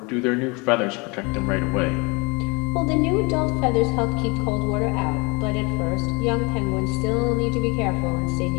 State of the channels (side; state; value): right; quieter; 28.6 dB